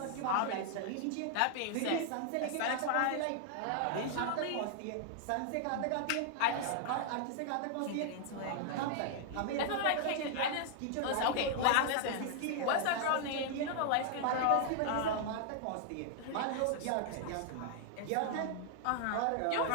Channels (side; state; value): both; different; correlation 0.00